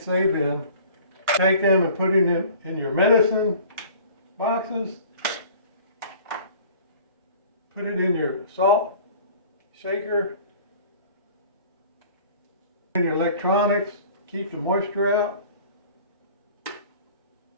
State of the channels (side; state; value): both; inverted; correlation -0.47